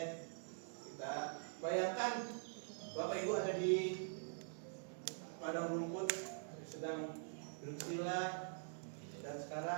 kita bayangkan Bapak Ibu ada di padang rumput sedang bersila dan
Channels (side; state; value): left; silent; digital silence